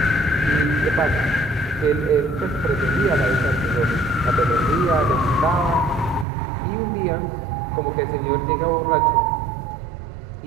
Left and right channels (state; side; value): drops out; left; at 6.2 s